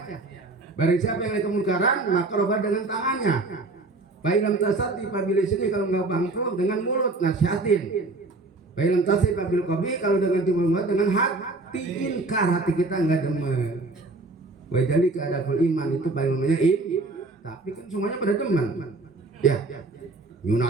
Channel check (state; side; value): quieter; left; 3.3 dB